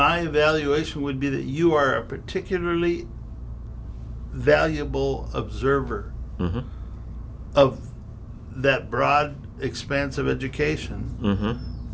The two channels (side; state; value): both; identical; correlation 1.00